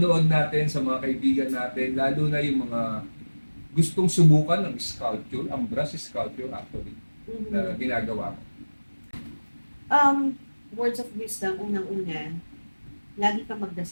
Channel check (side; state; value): both; inverted; correlation -1.00